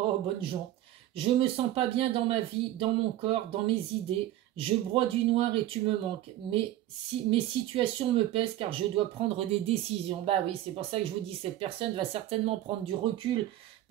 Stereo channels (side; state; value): left; quieter; 13.8 dB